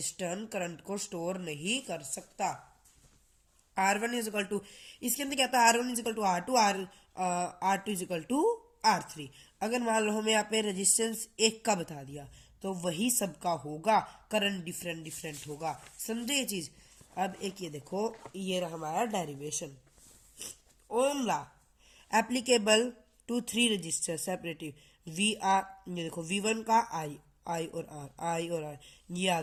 करंट को स्टोर नहीं कर सकता। R1 इज इक्वल टू, इसके अंदर क्या था, R1 is equal to R2, R2 is equal to R3। अगर मान लो हमें यहाँ पे रेजिस्टेंस एक का बता दिया, तो वही सबका होगा, करंट डिफरेंट डिफरेंट होगा। समझे ये चीज? अब एक ये देखो, ये रहा हमारा derivation. Ohm law applicable to 3 register separative we are, ये देखो V1 का आई और आर, ये आ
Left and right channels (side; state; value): both; identical; correlation 1.00